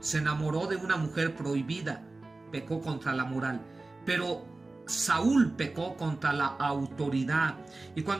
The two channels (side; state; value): left; quieter; 3.3 dB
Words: se enamoró de una mujer prohibida, pecó contra la moral, pero Saúl pecó contra la autoridad. Y